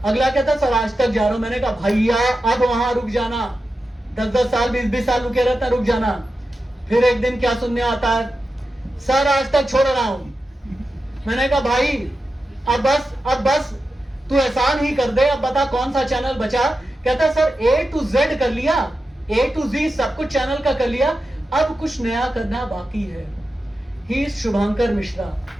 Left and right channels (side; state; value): both; normal; correlation 0.91